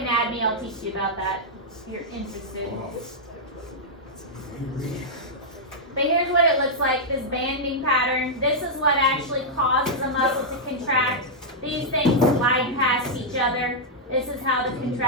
I'll teach you about that if you're interested. But here's what it looks like, this banding pattern. This is what actually causes a muscle to contract. These things slide past each other. This is how the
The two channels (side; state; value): both; normal; correlation -0.06